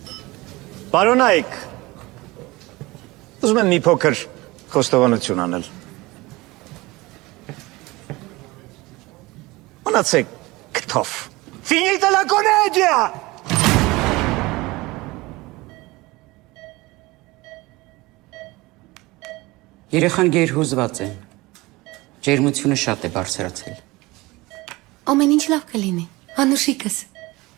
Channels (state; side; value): quieter; left; 21.4 dB